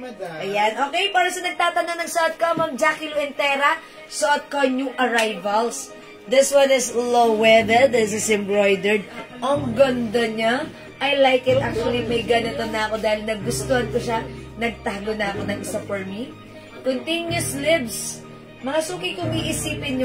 Ayan, okay, para sa nagtatanong ng suot ko, Ma'am Jackie Luentera, suot ko new arrivals. This one is low-weathered. This is embroidered. Ang ganda niya. I like it. Actually, may ganito na ako dahil nagustuhan ko siya. Nagtago na ako ng isa for me. Continuous sleeves. Mga Suki, kung iisipin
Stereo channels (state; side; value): identical; both; correlation 1.00